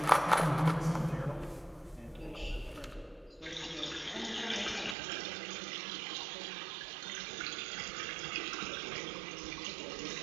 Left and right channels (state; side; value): drops out; left; at 5.0 s